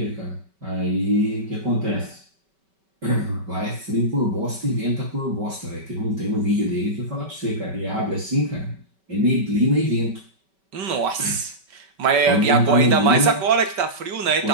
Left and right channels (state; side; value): late; left; 5.2 ms